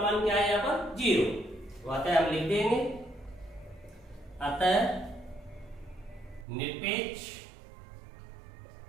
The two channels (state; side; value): drops out; left; at 6.5 s